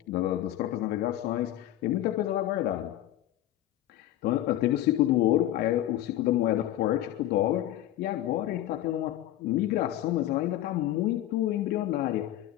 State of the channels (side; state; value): right; quieter; 13.5 dB